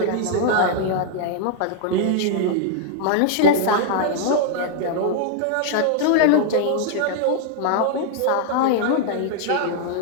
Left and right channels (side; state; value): both; different; correlation -0.01